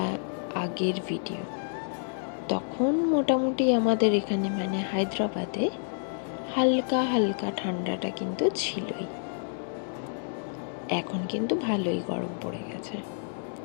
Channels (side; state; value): right; silent; digital silence